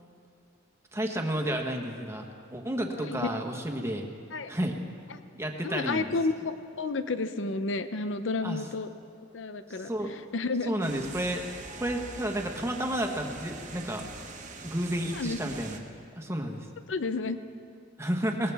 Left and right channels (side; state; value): both; normal; correlation 0.50